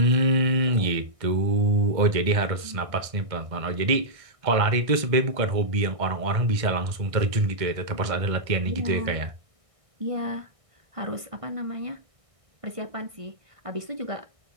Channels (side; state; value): left; late; 1.6 ms